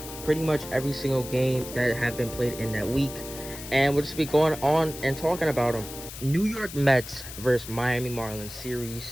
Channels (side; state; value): left; noise; hiss, 12 dB below the sound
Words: pretty much every single game that have been played in that week. And we'll just be going on and talking about them. New York Mets versus Miami Marlins